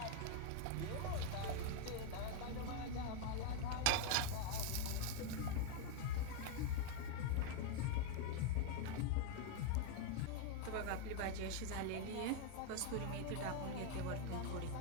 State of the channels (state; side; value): different; both; correlation 0.01